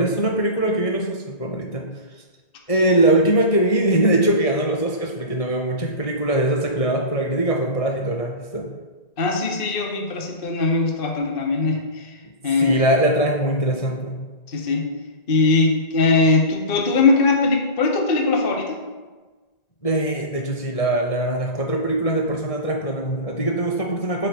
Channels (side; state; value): right; late; 1.7 ms